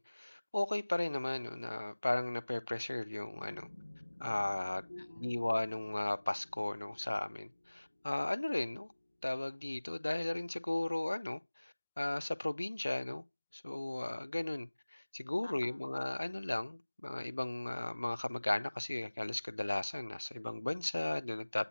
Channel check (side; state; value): both; inverted; correlation -1.00